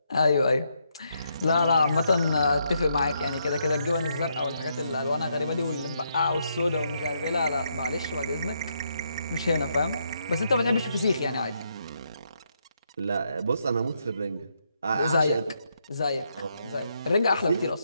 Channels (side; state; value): both; inverted; correlation -0.78